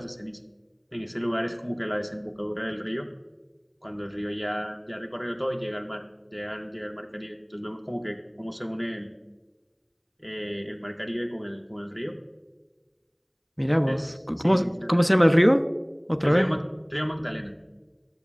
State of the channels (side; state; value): both; identical; correlation 1.00